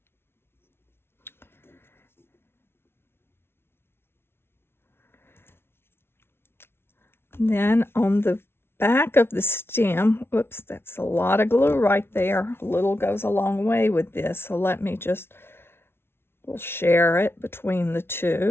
Then on the back of the stem, whoops, that's a lot of glue right there. A little goes a long way with this, so let me just, we'll share it between the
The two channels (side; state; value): right; late; 0.12 ms